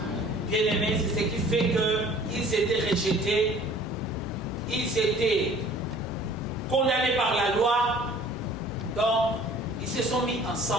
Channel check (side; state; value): both; normal; correlation 0.51